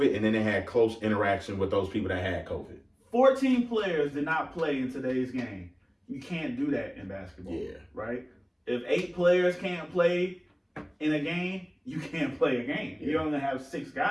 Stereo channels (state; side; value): identical; both; correlation 1.00